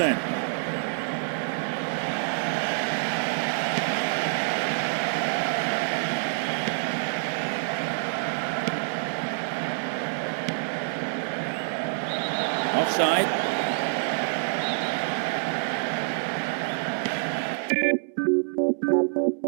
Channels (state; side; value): silent; left; digital silence